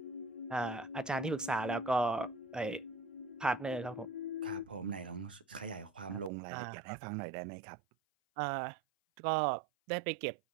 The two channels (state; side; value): drops out; left; at 6.3 s